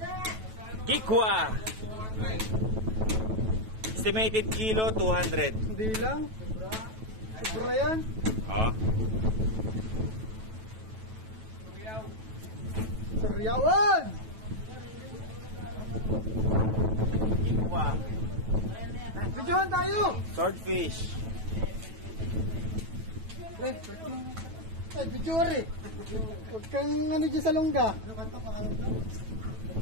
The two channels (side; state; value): left; late; 9.2 ms